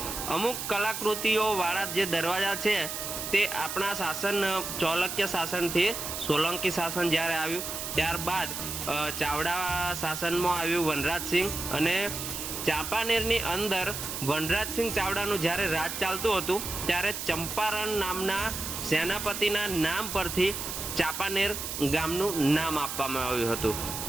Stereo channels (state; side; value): noise; right; hiss, 5 dB below the sound